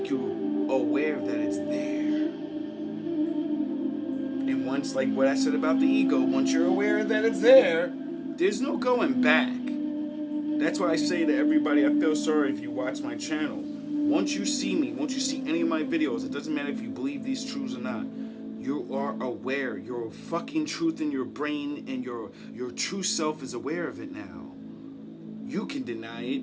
you aware that it's there. And once, like what I said about the ego, once you're aware that it's there, there's no going back. That's why I say to everybody, I feel sorry if you watch my channel. Once you see me, once you see any of my videos, it doesn't matter if you believe these truths or not. You are aware. Your fucking truth in your brain and your true self is aware of it now. You can deny it.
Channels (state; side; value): identical; both; correlation 1.00